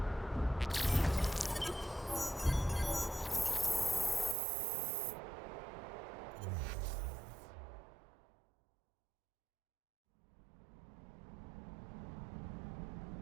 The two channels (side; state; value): left; drops out; at 4.4 s